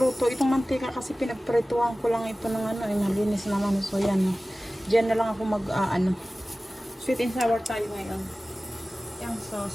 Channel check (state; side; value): normal; both; correlation 0.97